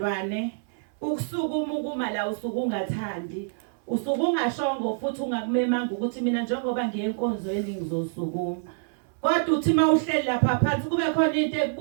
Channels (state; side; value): silent; left; 61 dB below the other